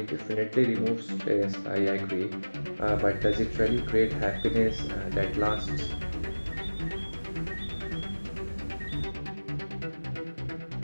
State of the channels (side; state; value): both; inverted; correlation -1.00